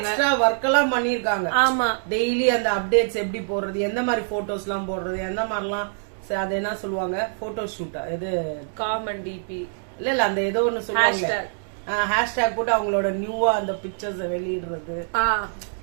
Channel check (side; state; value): left; silent; digital silence